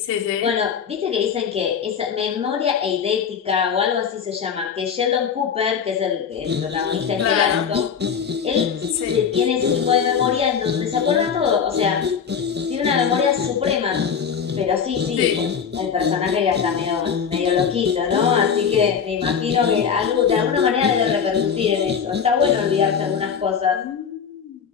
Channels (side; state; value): right; quieter; 7.0 dB